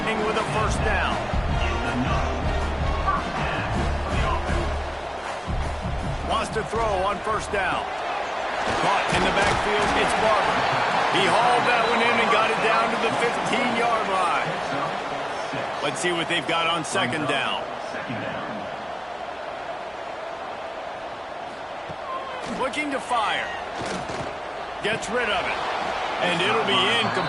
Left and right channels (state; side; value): identical; both; correlation 1.00